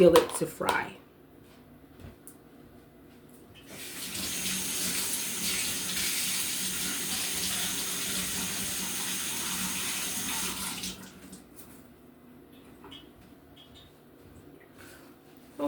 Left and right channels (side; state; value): both; identical; correlation 1.00